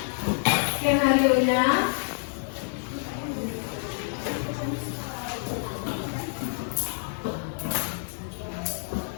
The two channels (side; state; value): right; silent; 58 dB below the other